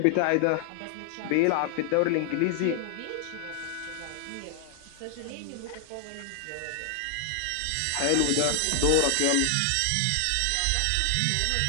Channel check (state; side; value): different; both; correlation 0.00